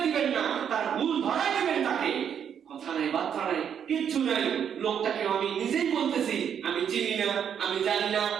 দিবেন না, তার ভুল ধরাই দিবেন তাকে। কথা নাই, বার্তা নাই, কিচ্ছু নাই। লোকটাকে আমি নিজেই বলতেছি আমি চিনি না, আমি জানি না,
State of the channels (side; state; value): left; quieter; 8.3 dB